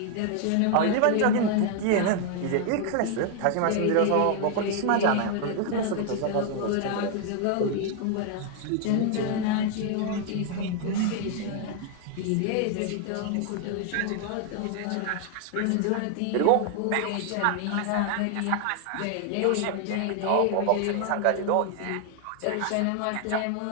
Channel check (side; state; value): both; different; correlation 0.00